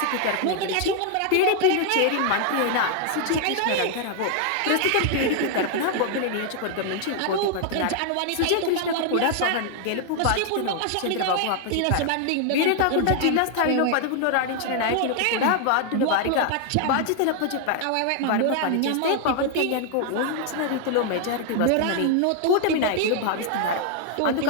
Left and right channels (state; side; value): different; both; correlation 0.00